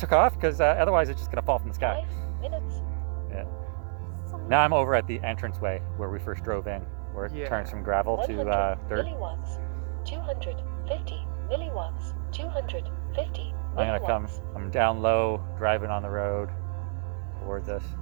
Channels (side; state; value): left; silent; 56 dB below the other